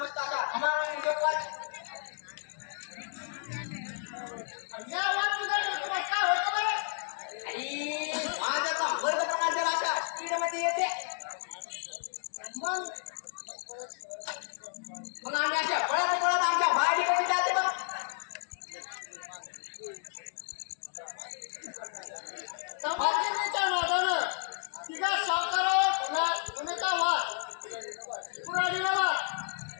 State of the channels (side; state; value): right; silent; digital silence